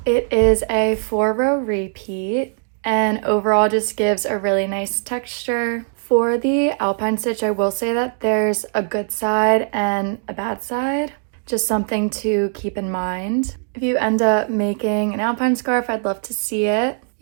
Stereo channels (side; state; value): left; silent; 66 dB below the other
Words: It is a 4-row repeat and overall just gives a really nice texture. For the Alpine stitch, I will say that there's a good side and a bad side, just something to keep in mind. If you end up making an Alpine scarf, I'd love to see it.